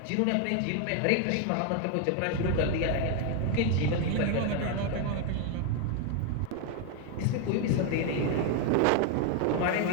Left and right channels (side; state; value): both; different; correlation 0.01